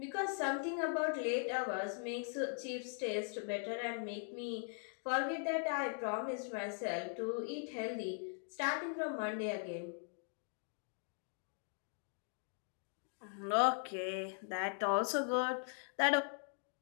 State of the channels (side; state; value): right; silent; 51 dB below the other